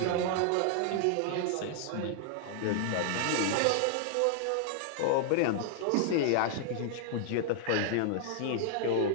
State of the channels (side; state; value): both; different; correlation -0.01